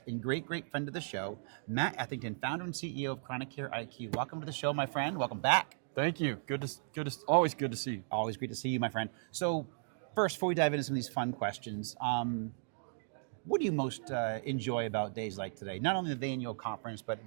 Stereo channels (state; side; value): silent; left; digital silence